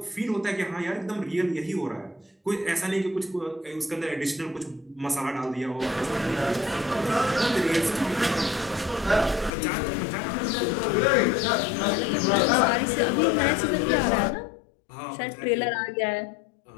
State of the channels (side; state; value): right; drops out; at 9.5 s